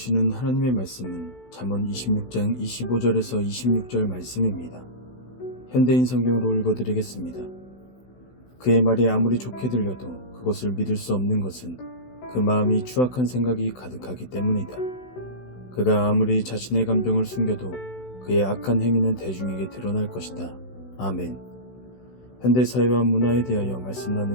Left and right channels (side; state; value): right; late; 16 ms